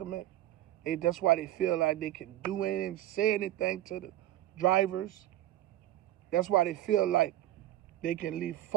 That's why they feel like they can do anything, say anything to the drivers. That's why they feel like they can leave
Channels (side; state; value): left; quieter; 13.7 dB